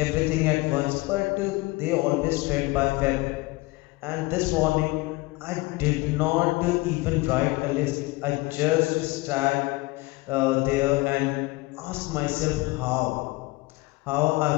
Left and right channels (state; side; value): quieter; right; 22.3 dB